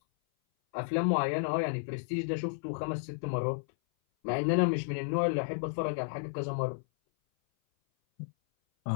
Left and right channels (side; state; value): right; silent; 56 dB below the other